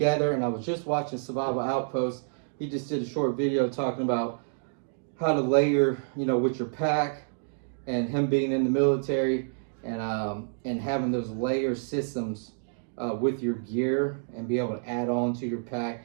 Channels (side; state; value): left; silent; digital silence